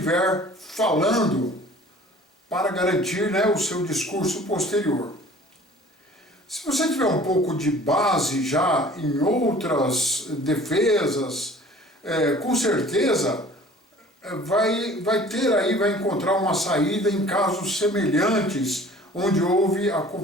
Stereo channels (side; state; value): both; normal; correlation 0.48